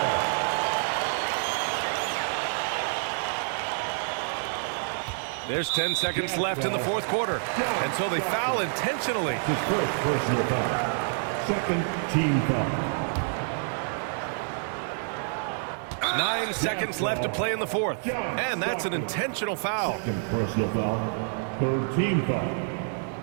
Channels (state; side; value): silent; left; 60 dB below the other